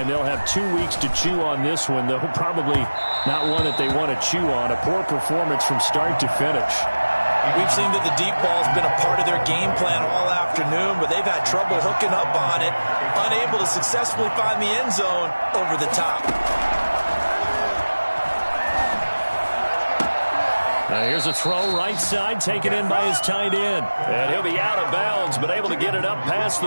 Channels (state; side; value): inverted; both; correlation -1.00